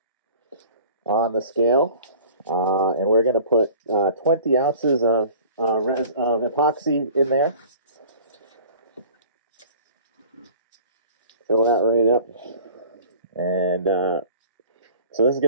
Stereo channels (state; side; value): inverted; both; correlation -0.46